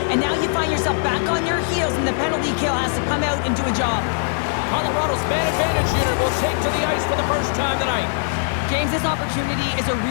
and now you find yourself back on your heels, and the penalty kill has to come out and do a job. Colorado's man advantage unit will take to the ice for the first time tonight. James, this opportunity is a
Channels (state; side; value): silent; right; 65 dB below the other